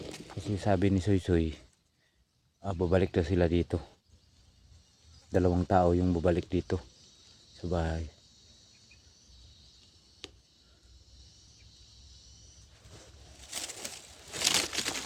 Kasi sabi ni Soy, babalik na sila dito. 2 tao yung babalik dito sa bahay.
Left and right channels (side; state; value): both; identical; correlation 1.00